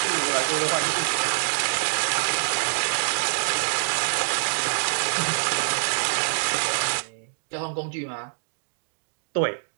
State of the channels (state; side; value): silent; left; digital silence